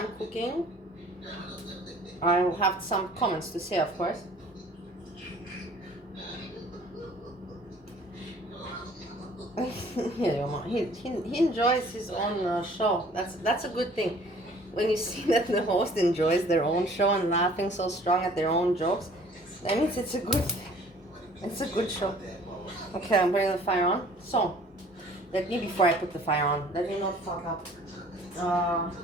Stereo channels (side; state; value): both; normal; correlation 0.53